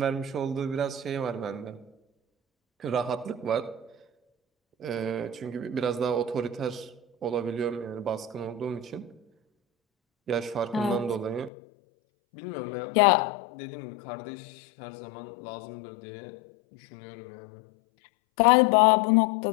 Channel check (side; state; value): right; drops out; at 11.5 s